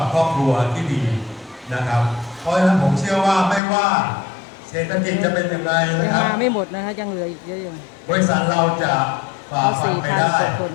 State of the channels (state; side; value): drops out; right; at 3.6 s